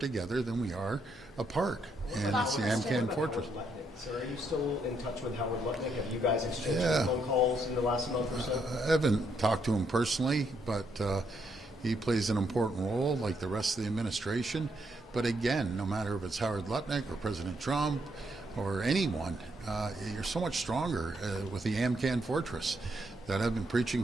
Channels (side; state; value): both; normal; correlation 0.76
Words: than we are apart. And it's the Amcan Fortress. So are you still in touch with Howard Lutnick? Have you guys exchanged phone calls in the last month or so? I haven't talked to him personally, but he plays an important role like the rest of the administration. But again, no matter if it's Howard Lutnick or President Trump or anyone, you're so much stronger with the Amcan Fortress that I've been preaching